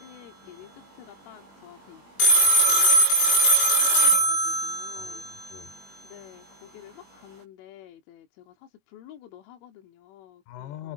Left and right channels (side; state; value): right; late; 21 ms